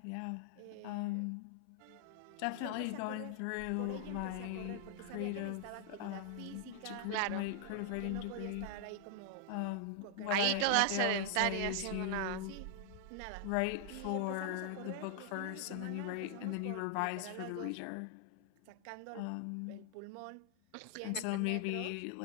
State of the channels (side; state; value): both; different; correlation 0.00